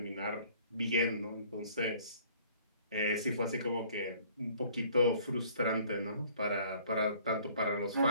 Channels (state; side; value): inverted; both; correlation -0.55